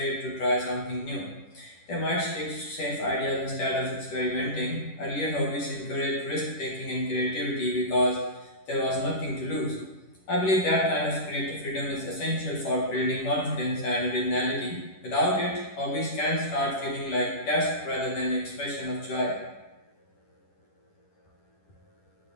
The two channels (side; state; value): right; late; 10 ms